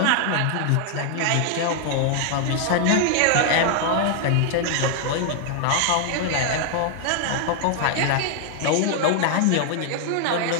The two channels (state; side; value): different; both; correlation 0.00